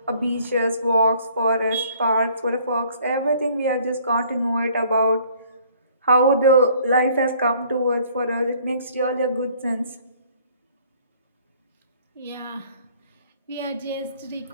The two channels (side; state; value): both; inverted; correlation -0.57